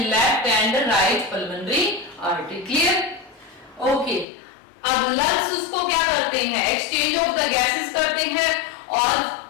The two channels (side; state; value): right; drops out; at 4.2 s